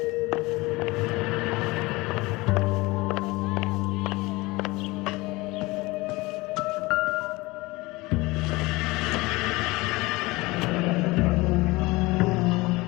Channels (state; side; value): quieter; right; 22.2 dB